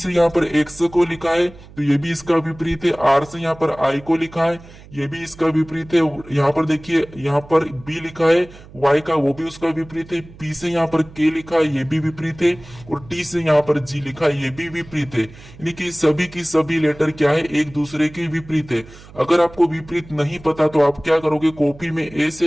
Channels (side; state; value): right; noise; hum, 20 dB below the sound